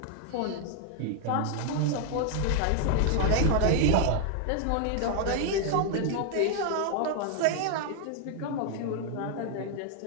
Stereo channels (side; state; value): both; different; correlation 0.00